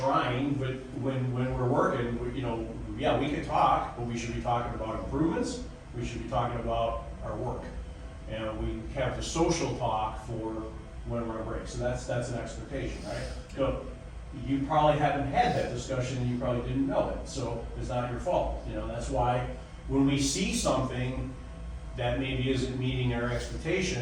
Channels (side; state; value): both; identical; correlation 1.00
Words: but when we're working, we can talk, but we should be talking about improvements. We should be talking about our work. And we have the social talk for when we're on break. So that's an expectation, right? You probably haven't had that discussion and you probably didn't know it. So it's not your fault. That's why when we see something that maybe isn't meeting our